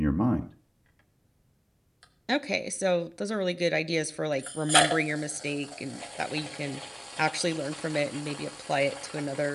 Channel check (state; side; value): identical; both; correlation 1.00